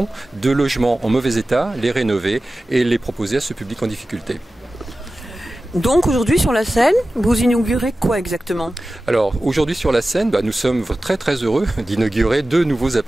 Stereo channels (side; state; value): both; normal; correlation 0.95